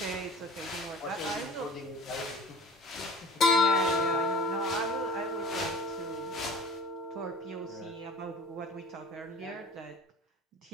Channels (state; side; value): normal; both; correlation 0.43